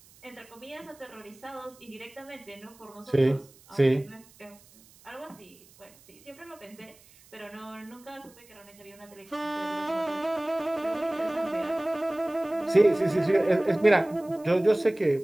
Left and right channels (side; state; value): right; noise; hiss, 26 dB below the sound